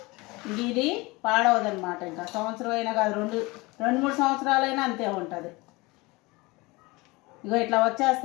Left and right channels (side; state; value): right; quieter; 23.6 dB